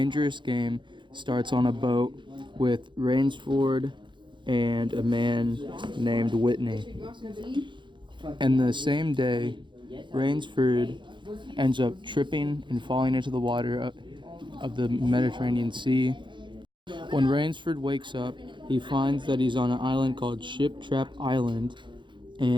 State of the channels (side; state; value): left; late; 0.23 ms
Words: Game starts on a boat with Rainsford and a man named Whitney. And the same day, Rainsford ends up tripping and falling into the water of the Mediterranean Sea. When Rainsford wakes up, he finds that he's on an island called Ship Trap Island,